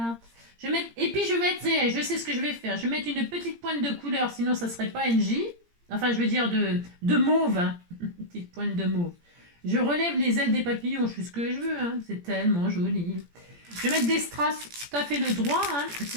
Je vais mettre, et puis je vais mettre, je sais ce que je vais faire. Je vais mettre une petite pointe de couleur, sinon ça serait pas NJ. Enfin, je veux dire de mauve. Hein. Une petite pointe de mauve. Je relève les ailes des papillons, je fais ce que je veux. Hein. C'est tellement joli. Je vais mettre des strass tout à fait le droit. Hein.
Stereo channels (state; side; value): late; left; 17 ms